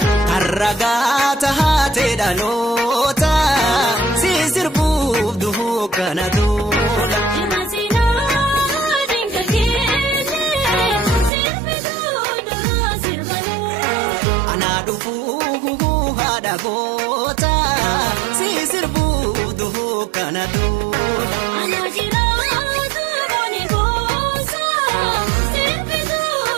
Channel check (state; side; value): drops out; left; at 11.3 s